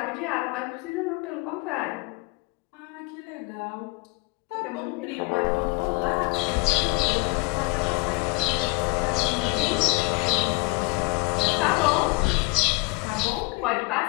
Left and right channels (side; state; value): right; quieter; 26.5 dB